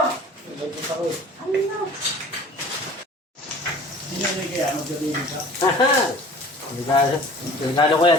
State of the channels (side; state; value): both; normal; correlation 0.46